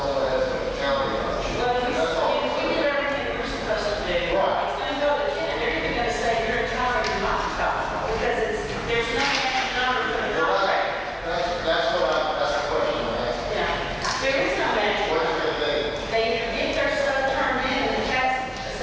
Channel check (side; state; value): both; identical; correlation 1.00